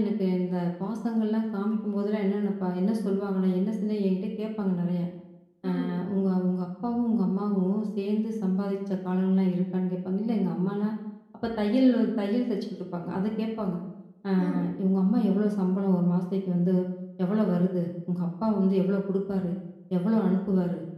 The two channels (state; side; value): identical; both; correlation 1.00